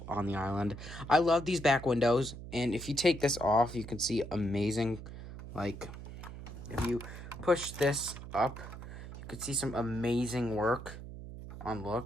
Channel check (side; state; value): right; noise; hum, 11 dB below the sound